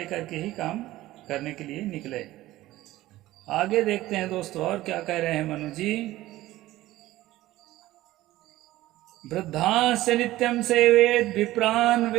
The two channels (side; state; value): left; quieter; 16.3 dB